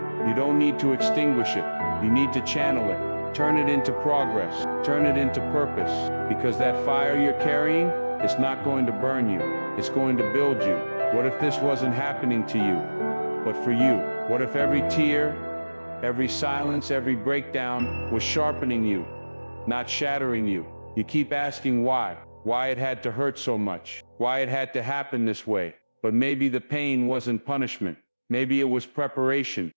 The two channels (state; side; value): inverted; both; correlation -1.00